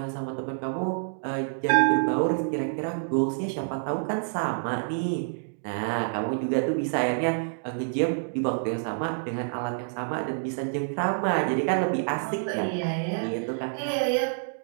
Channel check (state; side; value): silent; left; digital silence